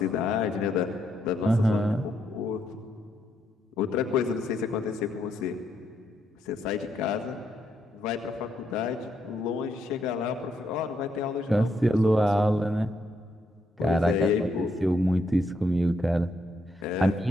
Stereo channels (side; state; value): both; normal; correlation 0.77